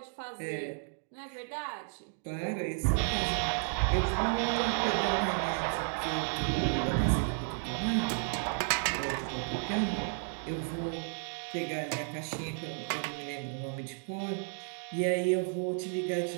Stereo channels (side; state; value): left; silent; 56 dB below the other